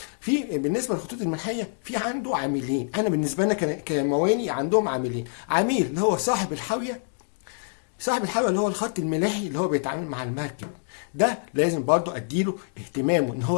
في بالنسبه للخطوط الملاحيه في عنده عاملين. انا بالنسبه لنا كمواني عندهم عاملين، عميل اللي هو صاحب الحاويه اللي هو الخط الملاحي اللي هو بيتعامل مع المركب، ده لازم برضو اديله اهتمامه، ان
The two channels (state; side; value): silent; right; digital silence